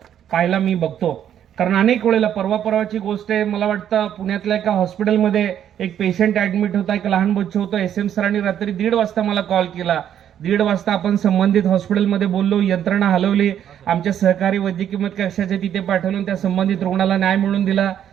मी बघतो. कारण अनेक वेळेला परवाची गोष्ट आहे, मला वाटतं पुण्यातल्या एका हॉस्पिटलमध्ये एक पेशंट ऍडमिट होता, एक लहान बच्चू होतं. एस.एम. सरांनी रात्री 1:30 वाजता मला कॉल केला. 1:30 वाजता आपण संबंधित हॉस्पिटलमध्ये बोललो, यंत्रणा हलवली, आमच्या सहकारी वैद्यकीय मत कक्षाचे तिथे पाठवून त्या संबंधित रुग्णाला न्याय मिळवून दिला.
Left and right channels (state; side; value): quieter; left; 9.9 dB